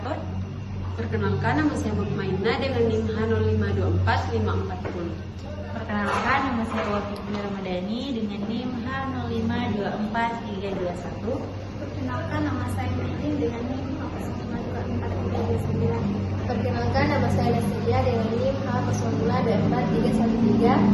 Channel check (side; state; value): both; identical; correlation 1.00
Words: Perkenalkan, nama saya Mukmaina dengan NIM H0524540. Perkenalkan, nama saya Wafiqah Ramadhani dengan NIM H0524321. Perkenalkan, nama saya Mehdi dengan NIM H0524329. Perkenalkan, nama saya Nasilia dengan NIM H0024313.